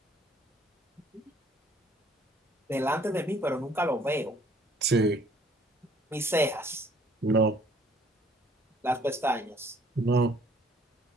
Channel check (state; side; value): normal; both; correlation 0.59